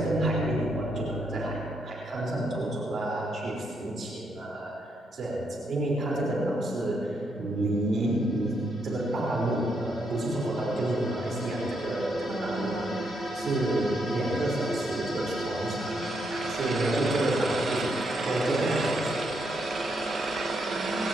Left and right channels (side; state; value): both; normal; correlation 0.78